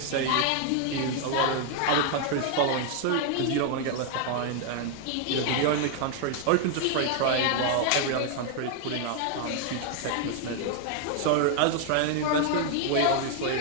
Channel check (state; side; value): different; both; correlation 0.00